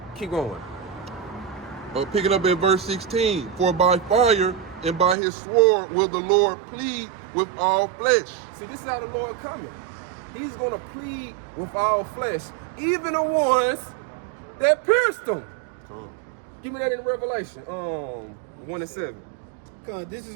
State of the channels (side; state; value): left; drops out; at 5.2 s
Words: Keep going. Picking up at verse 16. For by fire and by his sword will the Lord plead with all flesh. See, this is how the Lord coming. He's gonna plead with all flesh, even the ones that pierced him. Give me that in Revelation, 1:7. Cause this